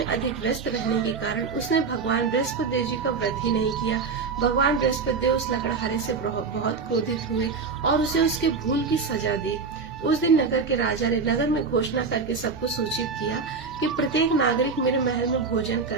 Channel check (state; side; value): quieter; left; 4.9 dB